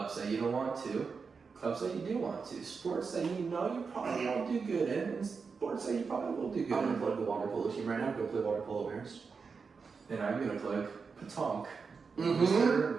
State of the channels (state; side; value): quieter; left; 5.2 dB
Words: that you don't want to, clubs that you do want to, sports that you know you probably won't do good in, and sports that you probably will do good I'm gonna in. plug the water polo team right now. Go play water polo, Maris. And I'm gonna plug Petanque. Mm-hmm.